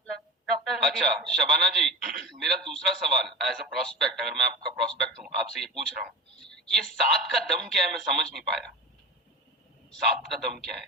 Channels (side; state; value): both; normal; correlation 0.28